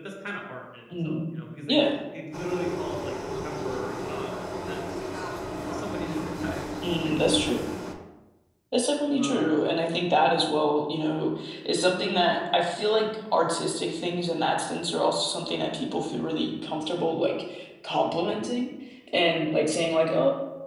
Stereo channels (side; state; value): both; identical; correlation 1.00